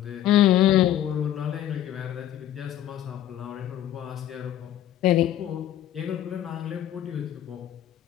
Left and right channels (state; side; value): quieter; right; 11.9 dB